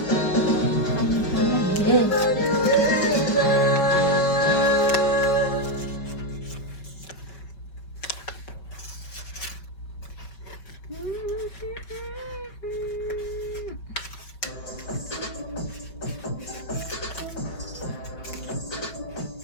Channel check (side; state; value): right; late; 5.4 ms